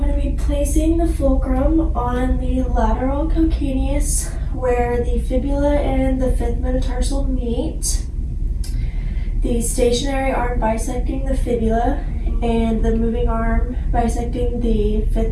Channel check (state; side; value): identical; both; correlation 1.00